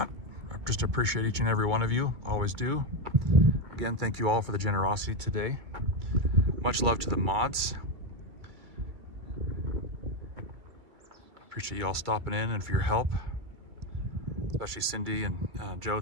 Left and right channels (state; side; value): late; left; 2.3 ms